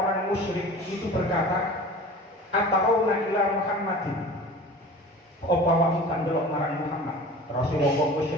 musyrik itu berkata atauna ila Muhammadin, apa awakmu kan delok marang Muhammad, Rasulullah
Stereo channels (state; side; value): normal; both; correlation 0.39